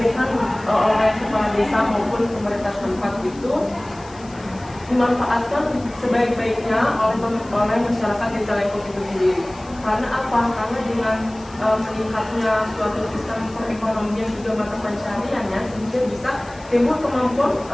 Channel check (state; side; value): noise; left; hiss, 23 dB below the sound